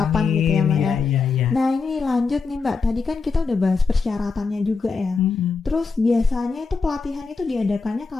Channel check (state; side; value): quieter; right; 4.6 dB